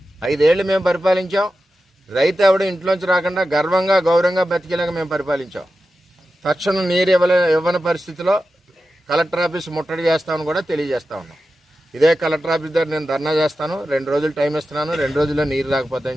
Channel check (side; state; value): both; normal; correlation 0.92